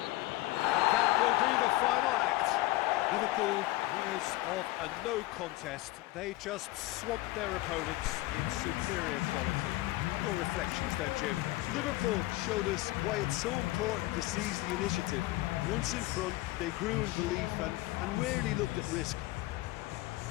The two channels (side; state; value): right; quieter; 18.7 dB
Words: That will be the final act. Liverpool, winners of a no contest, they just swamped their opponents in superior quality. Your reflections then, Jim? Liverpool showed us why it's so important to seize the initiative. Once in front, they grew in belief and rarely looked at risk.